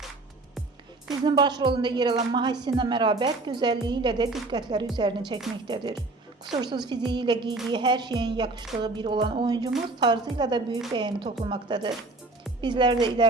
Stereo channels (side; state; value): left; quieter; 3.2 dB